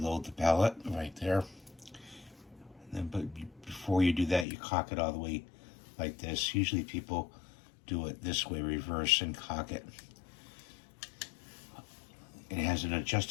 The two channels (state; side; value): drops out; right; at 4.5 s